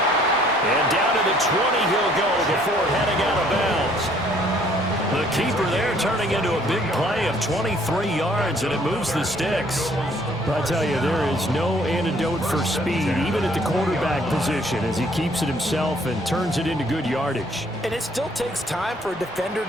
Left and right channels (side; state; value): both; normal; correlation 0.61